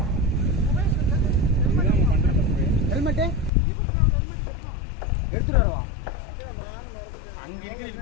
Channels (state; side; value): drops out; right; at 3.5 s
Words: ஹெல்மெட்டு எடுத்துட்டு வருவா அங்கே இருக்கிற